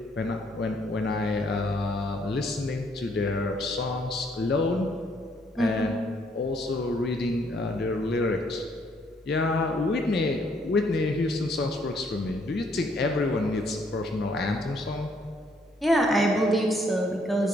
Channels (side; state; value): both; normal; correlation 0.68